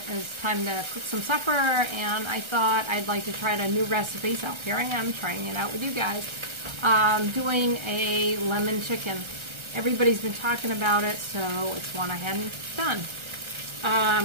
was time to cook some supper, and I thought I'd like to try a new recipe, so here I am trying it out with you guys. Doing a lemon chicken. Everybody's been talking about it, so it's one I hadn't done.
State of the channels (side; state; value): left; late; 1.3 ms